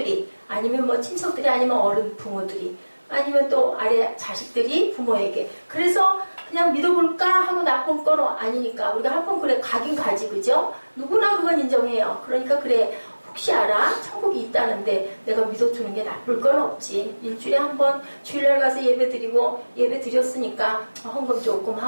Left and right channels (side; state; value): both; inverted; correlation -1.00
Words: 아니면 뭐 친척들이, 아니면 어른 부모들이, 아니면 또 아래 자식들이 부모에게. 그래서 그냥 믿어볼까 하고 나쁜 건 아니니까 우리가 한번 그래 가긴 가지, 그죠? 누구나 그건 인정해요. 그러니까 그래, 혹시 알아? 천국이 있다는데 내가 믿어주는 게 나쁠 건 없지. 일주일에 한 번 주일날 가서 예배 드리고, 예배 드렸으니까 헌금 조금